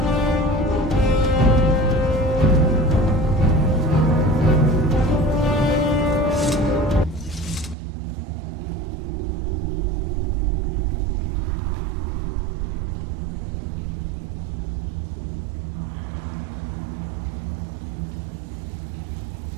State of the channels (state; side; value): drops out; left; at 7.8 s